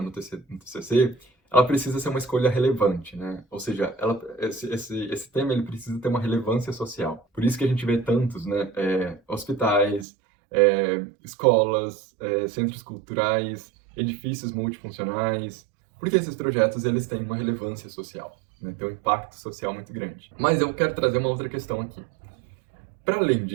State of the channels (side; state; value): left; drops out; at 10.1 s